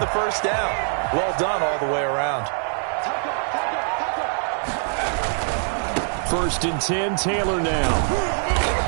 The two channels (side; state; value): left; silent; 63 dB below the other